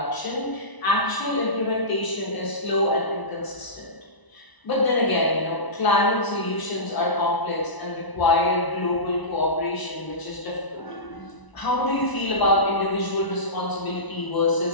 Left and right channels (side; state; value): right; late; 1.0 ms